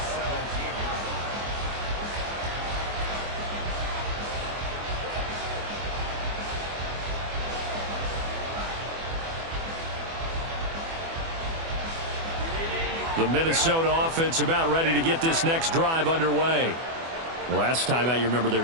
The Minnesota offense about ready to get this next drive underway. Last time out, you remember their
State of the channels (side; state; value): left; late; 24 ms